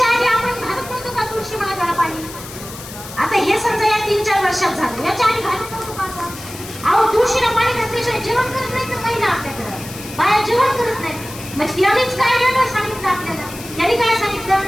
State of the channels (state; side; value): noise; left; hiss, 14 dB below the sound